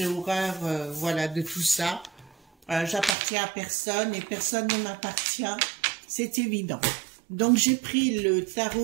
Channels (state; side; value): drops out; left; at 3.2 s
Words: horreur, voilà, de tout ça. J'appartiens à personne et personne ne m'appartient. C'est évident. Donc, j'ai pris le